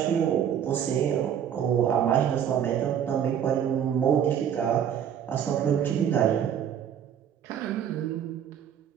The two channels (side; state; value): left; quieter; 9.0 dB